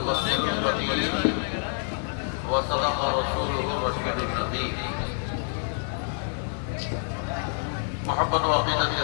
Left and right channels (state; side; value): silent; right; 60 dB below the other